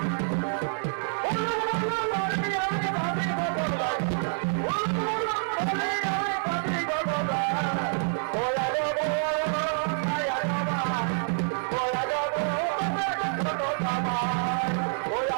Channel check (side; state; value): left; silent; 60 dB below the other